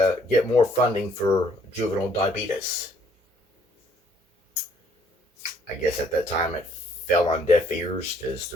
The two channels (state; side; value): normal; both; correlation 0.64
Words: get more funding for juvenile diabetes. I guess at that time it fell on deaf ears because